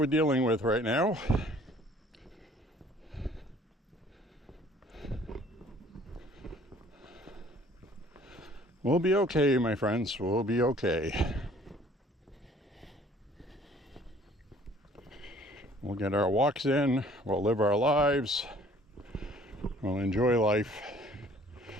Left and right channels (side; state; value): both; normal; correlation 0.55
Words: dealing with right now. We'll be okay, my friends. We'll be okay. We'll get our walks in. We'll live our lives. We'll enjoy life.